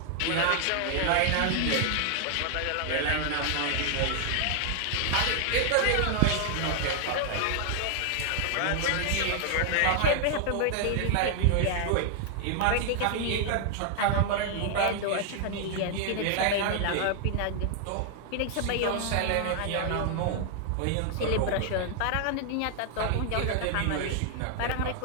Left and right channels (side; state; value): both; different; correlation 0.00